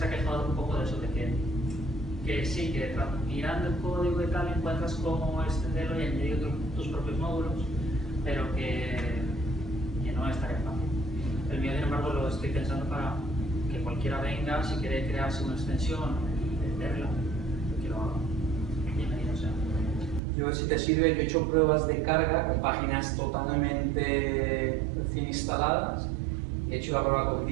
ha quejado un poco de eso, de que sí, que mirando el código y tal encuentras cómo extenderlo y añadir tus propios módulos, pero que no es tan fácil. El mío, sin embargo, lo estoy pensando para que cualquiera venga, si quiere crearse una extensión, venderla, que lo haga. Bienvenido sea. Yo, si te sirve, yo he hecho pruebas de carga con páginas totalmente recién instaladas. He hecho la prueba con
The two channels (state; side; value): drops out; left; at 20.2 s